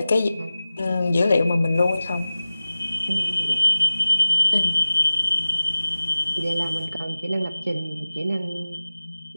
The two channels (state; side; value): inverted; both; correlation -0.97